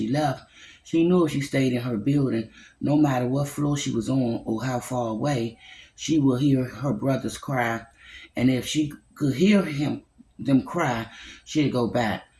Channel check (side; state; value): both; identical; correlation 1.00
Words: left, she knew if she stayed in her building, no matter what floor she was on or how far away, she would hear her brothers cry. And if she could hear them cry, she'd go back.